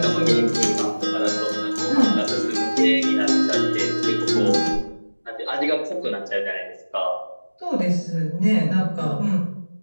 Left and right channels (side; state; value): both; inverted; correlation -1.00